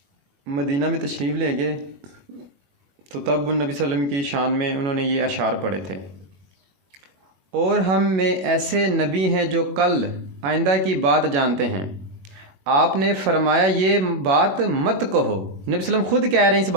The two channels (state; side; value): late; left; 21 ms